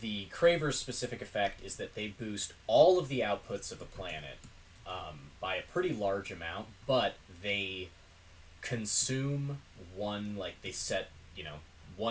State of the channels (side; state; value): both; identical; correlation 1.00